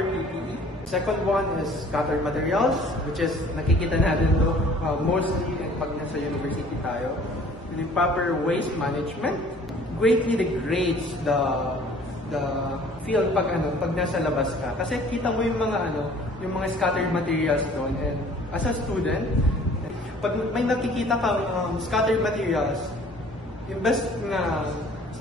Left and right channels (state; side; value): normal; both; correlation 0.52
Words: PPE. Second one is scattered materials, which is nakikita natin to mostly pag nasa university tayo. The proper waste management greatly degrades the field pag nasa labas ka. Kasi kita mo yung mga scattered materials doon, and as a student, pag may nakikita kang scattered materials, invest na